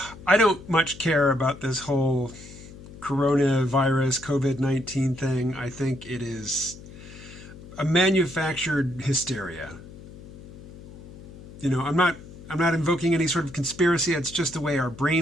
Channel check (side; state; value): left; noise; hum, 16 dB below the sound